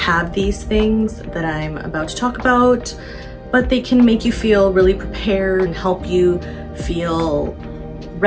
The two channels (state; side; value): identical; both; correlation 1.00